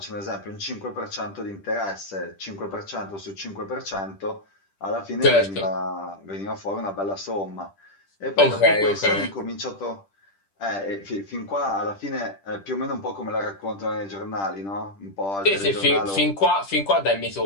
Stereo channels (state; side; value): late; right; 10 ms